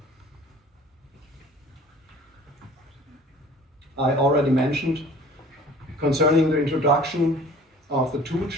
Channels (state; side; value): normal; both; correlation 0.48